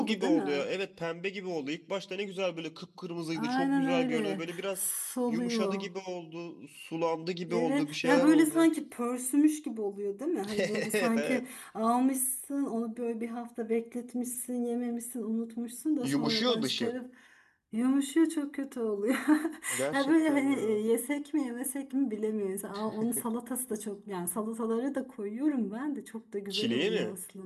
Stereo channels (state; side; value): identical; both; correlation 1.00